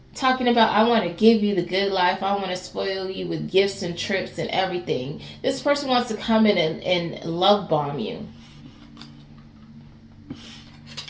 Talking about, I want to give you the good life. I want to spoil you with gifts and trips and everything. This person wants to come in and love bomb you.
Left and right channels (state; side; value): identical; both; correlation 1.00